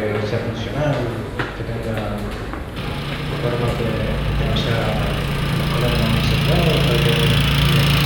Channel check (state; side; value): identical; both; correlation 1.00